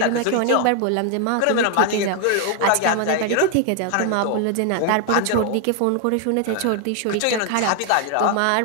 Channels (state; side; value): different; both; correlation 0.01